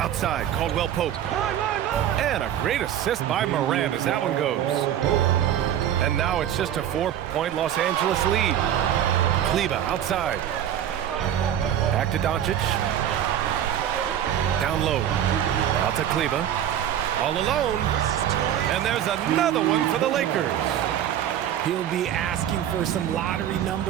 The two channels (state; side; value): quieter; left; 10.5 dB